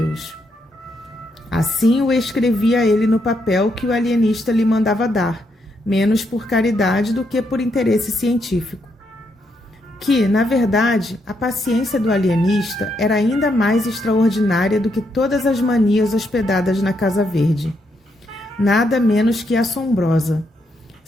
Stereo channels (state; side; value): normal; both; correlation 0.78